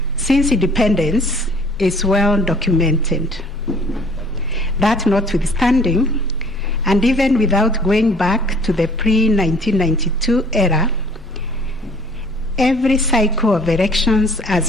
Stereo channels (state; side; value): normal; both; correlation 0.54